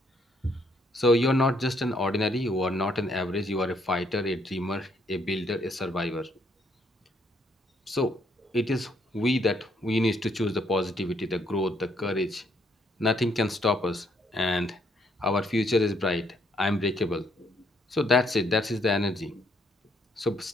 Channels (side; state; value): both; normal; correlation 0.71